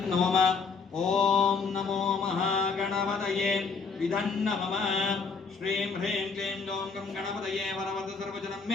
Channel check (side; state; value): right; quieter; 4.9 dB